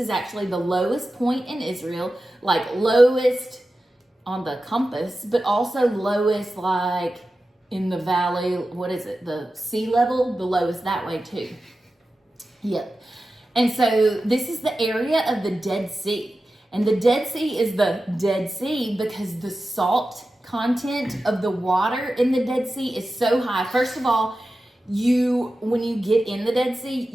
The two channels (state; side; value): normal; both; correlation 0.93